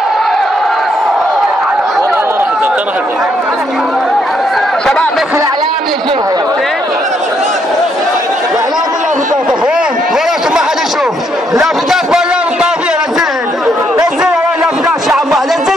شباب بس الاعلام يجيبها الاعلام كلها في الطائفيين ولا ما حد يشوف لافتات بغداد الطائفية. نزلها لافتات شعب الله،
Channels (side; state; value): both; normal; correlation 0.74